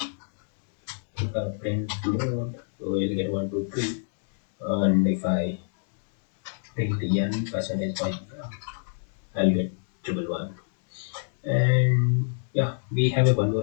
print mode, so you'll get 1 2 3. And if I print n percentage by I'll get triple one. And yeah, we have a one more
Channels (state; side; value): silent; right; digital silence